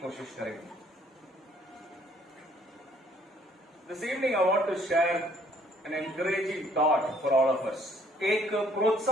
कोशिश करेंगे। This evening I want to share an encouraging thought for all of us. एक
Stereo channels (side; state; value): both; normal; correlation 0.63